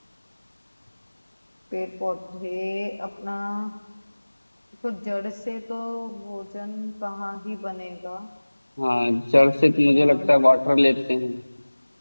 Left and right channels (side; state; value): both; inverted; correlation -1.00